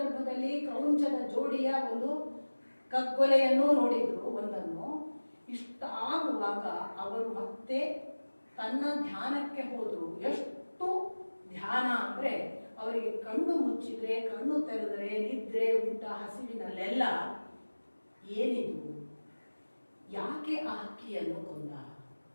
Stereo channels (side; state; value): both; inverted; correlation -1.00